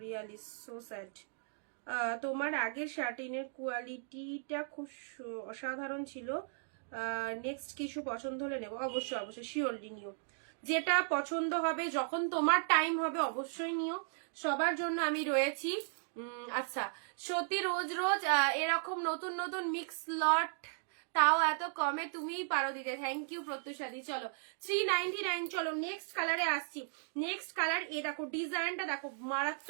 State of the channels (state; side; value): silent; left; digital silence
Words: রিয়ালি সো স্যাড। তোমার আগের শার্টিনের কোয়ালিটিটা খুব অসাধারণ ছিল। নেক্সট কিছু পছন্দ হলে নেবো। অবশ্যই অবশ্যই, শিওরলি নিও, যেটা পছন্দ হবে যখন তোমার টাইম হবে অবশ্যই নিও, সবার জন্য আমি রয়েছি। আচ্ছা, সত্যি রোজ রোজ এরকম নতুন নতুন মিক্স লট, তাও এত কমে, তুমিই পারো দিতে। থ্যাংক ইউ প্রত্যুষাদি। চলো 399। চলো নেক্সট কালারে আসছি। নেক্সট কালার, এ দেখো ডিজাইনটা দেখো,